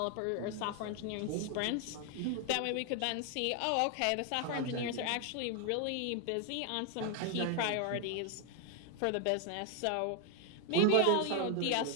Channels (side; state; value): both; different; correlation 0.00